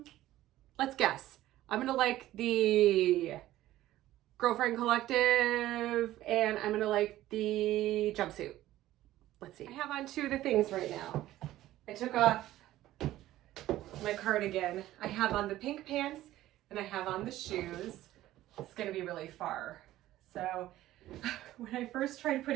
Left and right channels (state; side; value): quieter; left; 14.8 dB